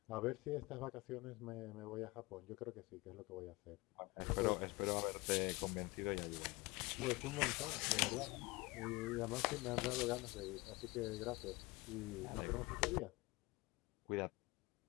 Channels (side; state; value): right; quieter; 23.1 dB